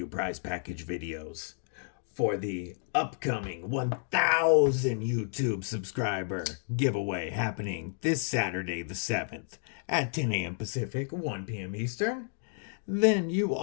prize package videos for the upcoming 1,000 YouTube subscriber giveaway happening this Saturday the 7th at 10 a.m. Pacific, 1 p.m. Eastern, then you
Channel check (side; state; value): right; silent; digital silence